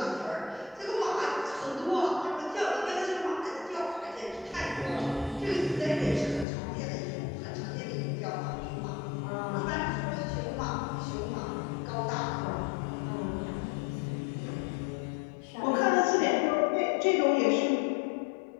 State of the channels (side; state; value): right; drops out; at 6.5 s